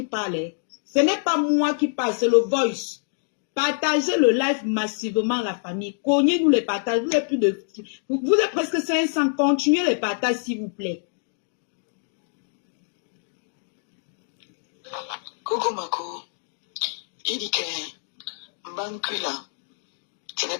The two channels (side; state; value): right; silent; digital silence